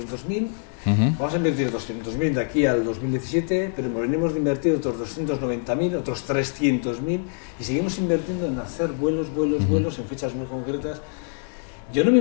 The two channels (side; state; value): right; silent; 57 dB below the other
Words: vamos a invertir 200.000 de aquí al 2017, pero venimos de invertir otros 290.000, otros 300.000, y seguimos invirtiendo en hacer vuelos en fechas muy concretas. Yo no me